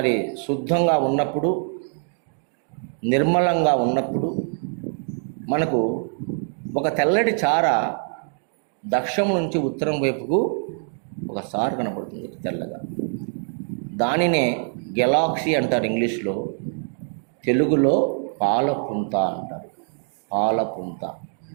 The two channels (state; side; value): silent; left; 55 dB below the other